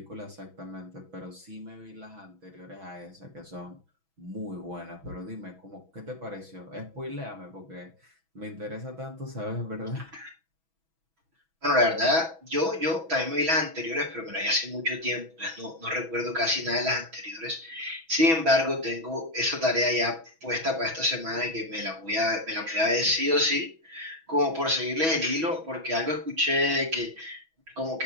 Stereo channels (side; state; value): left; late; 6.1 ms